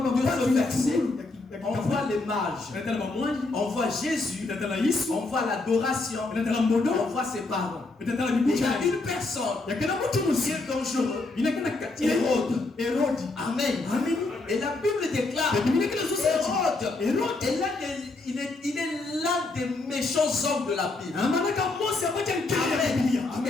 De baba ce verset, on on voit les mages, natala bamwanji on voit Jésus, natala Yesu on voit l'adoration, natala mbodo on voit ses parents. natala Et il y bibucha a une personne yakela mutu qui musi est dangereux. inakana kati ya Hérode. Herodi Amen. amen Et la Bible déclare biblia kile so Hérode Hérode est il est l'un des méchants hommes de la Bible. amanaka Mose abacha nkele ya biblia Amen.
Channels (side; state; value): right; quieter; 3.3 dB